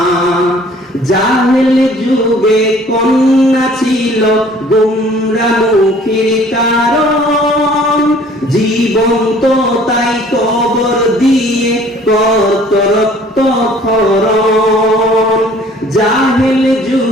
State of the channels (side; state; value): both; normal; correlation 0.54